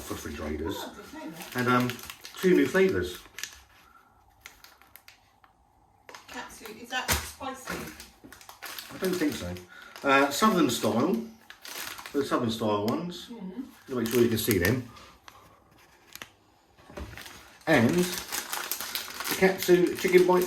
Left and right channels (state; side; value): identical; both; correlation 1.00